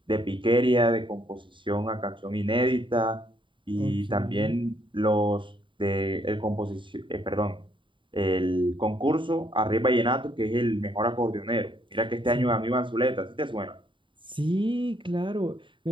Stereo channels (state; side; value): late; left; 0.24 ms